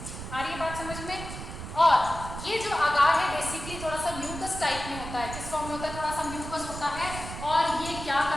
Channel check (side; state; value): right; noise; rumble, 9 dB below the sound